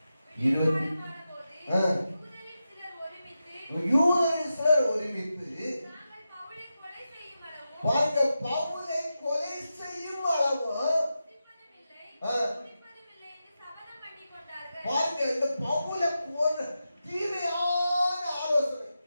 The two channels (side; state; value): both; inverted; correlation -0.90